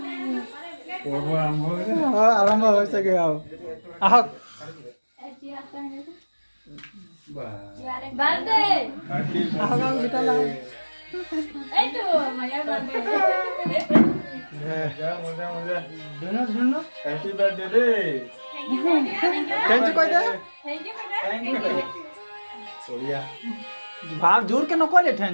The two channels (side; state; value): both; inverted; correlation -1.00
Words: আৰম্ভ হৈছেগে আৰু আহক বাৰ্থডে আহক আৰু ভিতৰলৈ এইটো মায়াৰ বাৰ্থডে মজা মজা দুনো হ্যাপি বার্থডে রে थैंक यू কই দে থ্যাংক ইউ সোয়া ভাব জোর কে নকলে